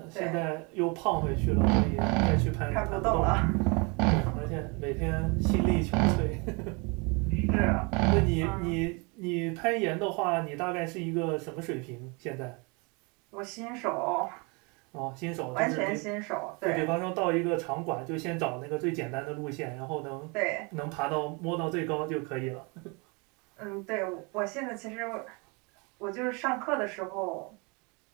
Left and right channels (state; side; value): quieter; left; 30.5 dB